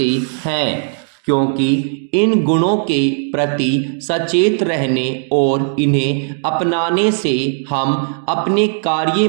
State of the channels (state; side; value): silent; left; 66 dB below the other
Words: हैं, क्योंकि इन गुणों के प्रति सचेत रहने और इन्हें अपनाने से हम अपने कार्य